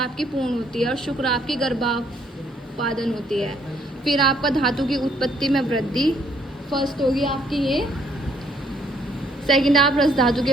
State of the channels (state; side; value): normal; both; correlation 0.67